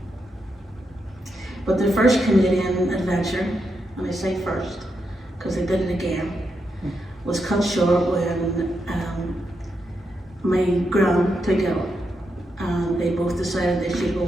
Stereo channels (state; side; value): normal; both; correlation 0.83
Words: But their first Canadian adventure, and I say first because they did it again, was cut short when my gran took ill, and they both decided they should